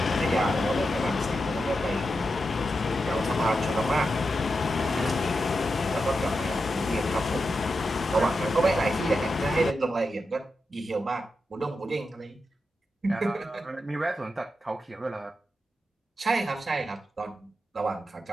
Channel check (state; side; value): normal; both; correlation 0.88